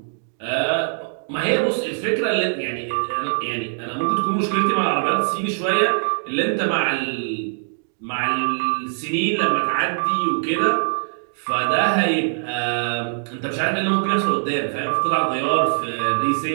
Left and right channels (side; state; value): left; silent; digital silence